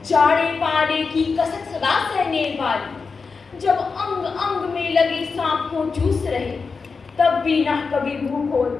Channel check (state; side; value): quieter; right; 4.8 dB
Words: जाड़े पाले की कसक सदा सहने वाली। जब अंग अंग में लगे सांप को चूस रहे, तब भी न कभी भूखो